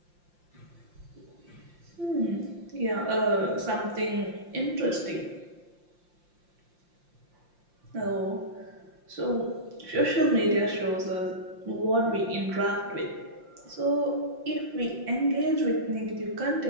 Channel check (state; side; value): late; left; 5.7 ms